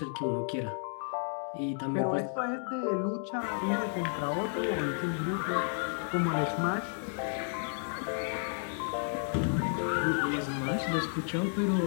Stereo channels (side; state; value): right; silent; 56 dB below the other